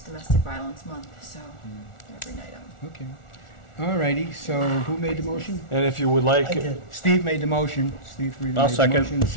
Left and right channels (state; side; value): late; right; 1.4 ms